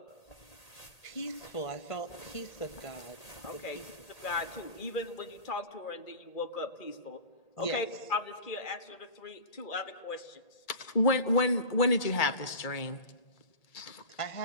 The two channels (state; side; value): late; right; 1.8 ms